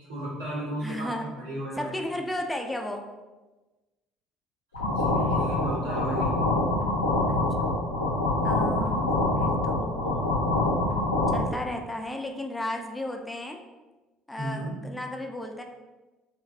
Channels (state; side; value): normal; both; correlation 0.38